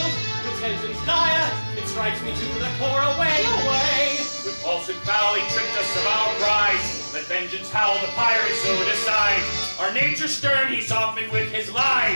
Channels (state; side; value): inverted; both; correlation -1.00